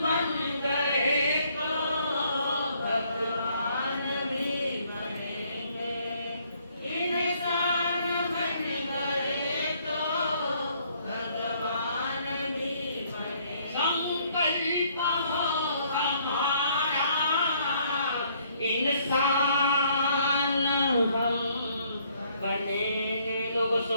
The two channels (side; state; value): both; inverted; correlation -0.66